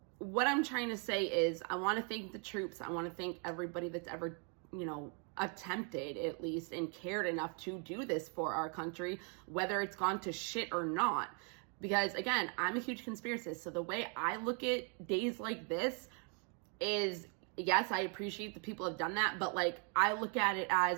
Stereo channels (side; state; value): left; quieter; 38.5 dB